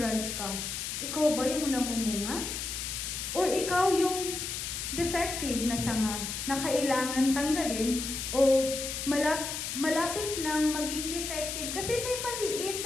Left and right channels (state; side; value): noise; left; hiss, 4 dB below the sound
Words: ka? Ikaw ba yung namumunga? Or ikaw yung defective na sanga na kailangan tanggalin o malapit nang maging defective kasi may maliit